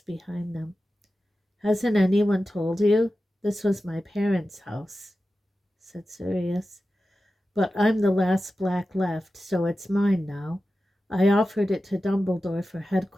behind them. Hasn't anyone told you? This was my parents' house, said Sirius. But I'm the last Black left, so it's mine now. I offered it to Dumbledore for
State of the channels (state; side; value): normal; both; correlation 0.93